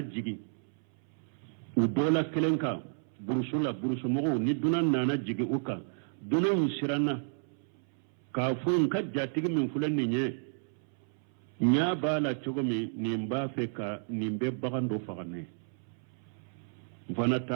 udola kelenka burusumogo ni dunan nana jigi uka dunan sirana kafun ka jatigi min fulan nye nya bala chogomi nimba feka nimbe bagando fagane mfana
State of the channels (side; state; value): left; silent; 57 dB below the other